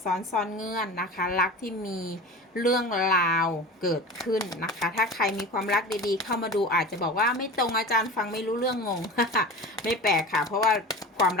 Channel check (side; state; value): both; normal; correlation 0.33